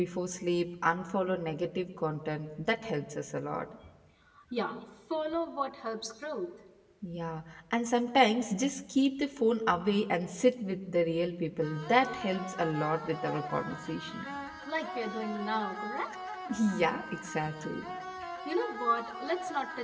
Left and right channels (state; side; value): identical; both; correlation 1.00